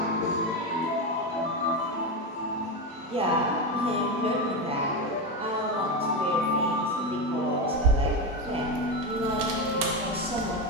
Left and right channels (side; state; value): both; normal; correlation 0.14